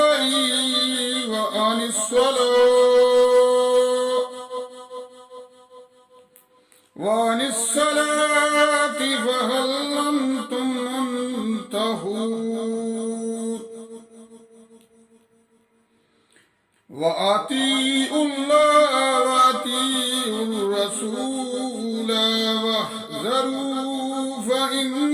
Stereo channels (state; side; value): identical; both; correlation 1.00